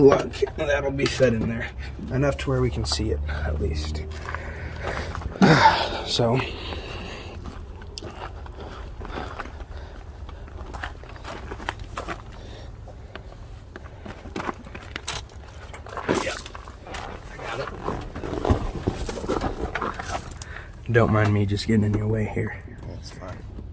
that'll be fed in there. Enough to where we can see it, at least. So, yeah, I got it. Don't mind me just getting in your way here. That's fine.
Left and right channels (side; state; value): both; identical; correlation 1.00